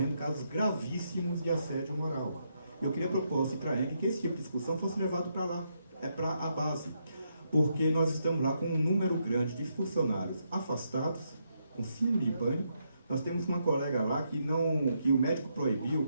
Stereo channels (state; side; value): inverted; both; correlation -0.79